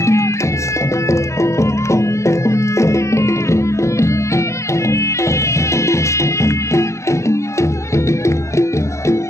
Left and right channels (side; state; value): right; late; 0.14 ms